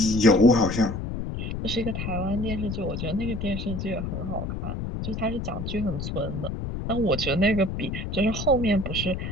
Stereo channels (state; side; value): noise; left; rumble, 4 dB below the sound